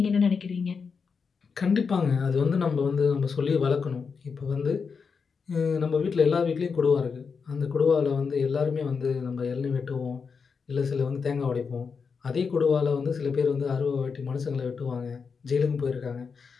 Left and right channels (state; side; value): quieter; right; 5.5 dB